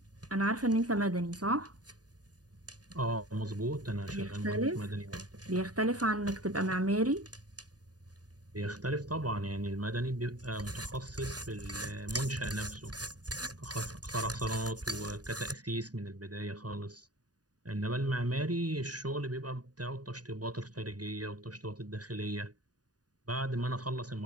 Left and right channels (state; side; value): late; left; 0.68 ms